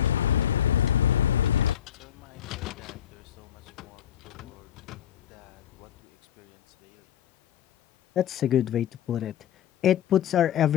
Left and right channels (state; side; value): quieter; right; 10.2 dB